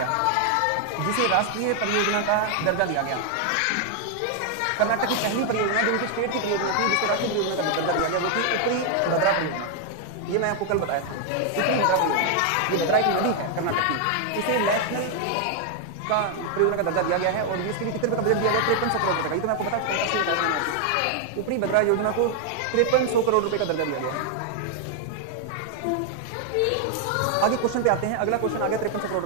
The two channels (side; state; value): both; different; correlation 0.00